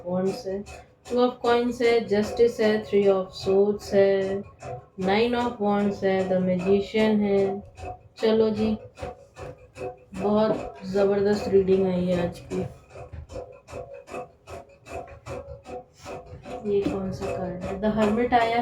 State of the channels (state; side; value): identical; both; correlation 1.00